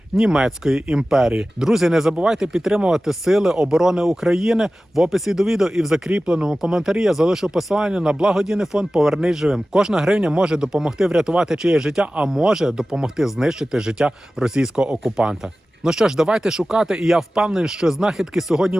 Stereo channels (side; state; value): both; normal; correlation 0.96